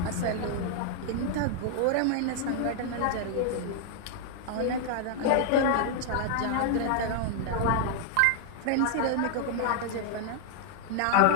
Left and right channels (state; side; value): different; both; correlation 0.00